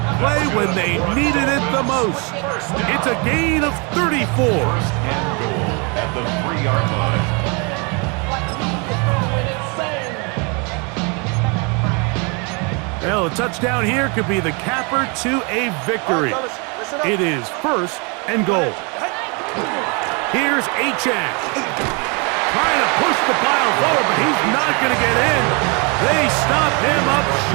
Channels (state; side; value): quieter; left; 32.2 dB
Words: play when they needed it the most. It's a gain of 34. And goal at the 3-yard line. Well, a touchdown here could be the capper to a victory. It is first and goal. Here's Achane. Trying to push the pile forward, but he's not going to get in. They stop him up